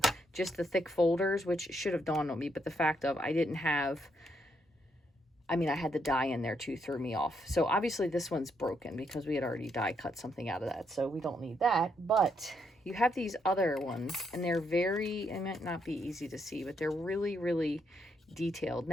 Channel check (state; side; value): normal; both; correlation 0.76